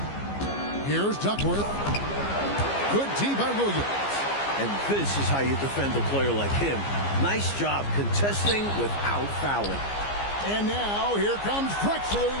Here's Duckworth. Good D by Williams. And this is how you defend a player like him. Nice job contesting without fouling. And now here comes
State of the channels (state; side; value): late; right; 15 ms